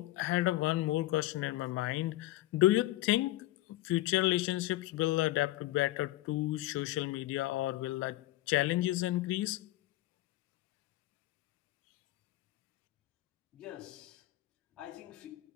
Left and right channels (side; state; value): right; quieter; 16.6 dB